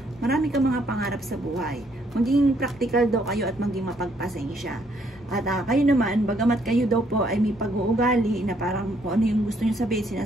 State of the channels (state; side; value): normal; both; correlation 0.69